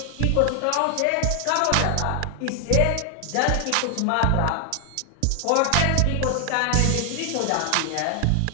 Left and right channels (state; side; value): different; both; correlation 0.00